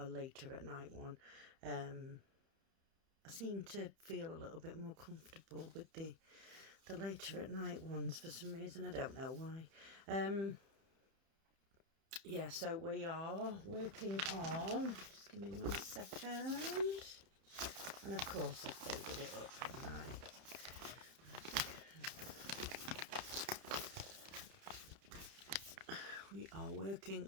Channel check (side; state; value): left; late; 31 ms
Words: later at night one. I seem to feel a little bit more comfortable with the later at night ones for some reason. I don't know why. Yeah, so we are working on. Just give me 1 second. And of course, I've folded it up, haven't I? We are working